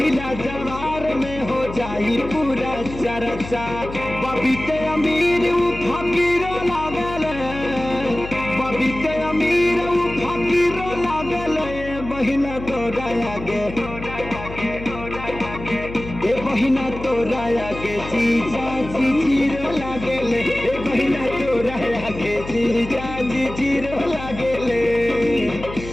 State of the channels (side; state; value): left; noise; hum, 11 dB below the sound